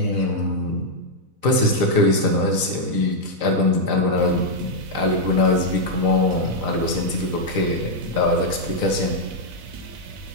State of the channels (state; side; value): late; left; 4.0 ms